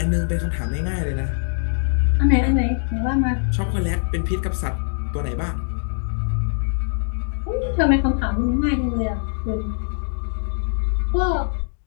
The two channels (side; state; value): right; silent; digital silence